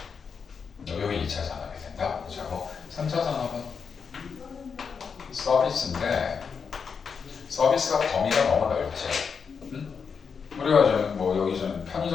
그래. 여기 2차 산업이 된다. 그렇고 3차 산업은 서비스인데, 서비스가 범위가 너무 넓지. 응? 우리가 뭐 여기 좀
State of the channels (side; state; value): right; quieter; 6.0 dB